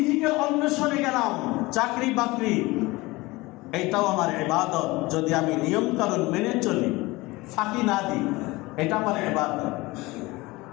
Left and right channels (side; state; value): right; quieter; 21.5 dB